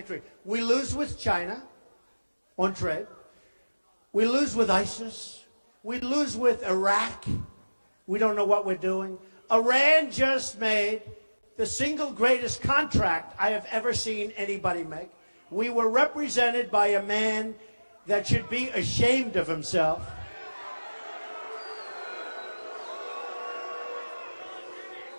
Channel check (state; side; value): inverted; both; correlation -1.00